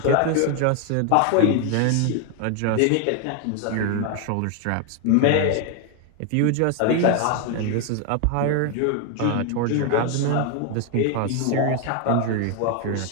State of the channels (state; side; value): different; both; correlation 0.01